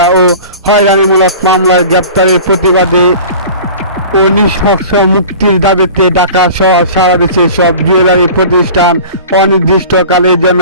ও হয়রানিমূলক মামলায় গ্রেপ্তারের প্রতিবাদে ও নিঃশর্ত মুক্তির দাবিতে ঢাকা সহ সারা দেশের সব জুয়েলারি প্রতিষ্ঠান অনির্দিষ্টকালের জন্য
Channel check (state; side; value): inverted; both; correlation -0.40